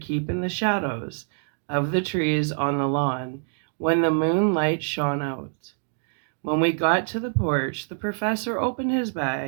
in the shadows of the trees on the lawn when the moonlight shone out. When we got to the porch, the professor opened his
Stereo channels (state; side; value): silent; left; digital silence